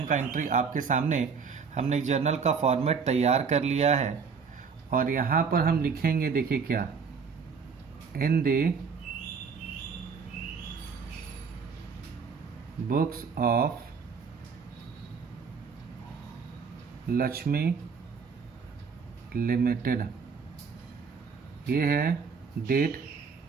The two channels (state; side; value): quieter; left; 5.7 dB